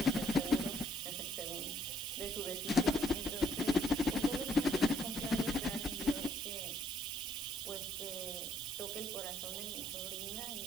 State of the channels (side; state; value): right; noise; hiss, 7 dB below the sound